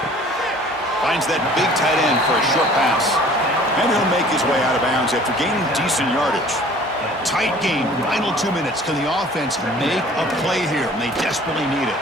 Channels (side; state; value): both; normal; correlation 0.50